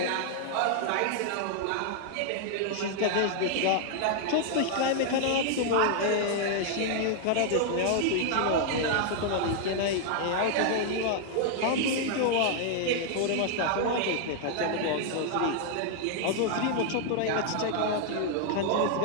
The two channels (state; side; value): different; both; correlation -0.01